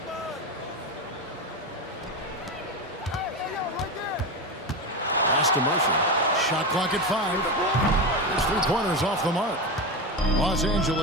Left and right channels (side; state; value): both; normal; correlation 0.18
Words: Pass to Murphy. Shot clock at 5. There's 3 pointers off the mark. Los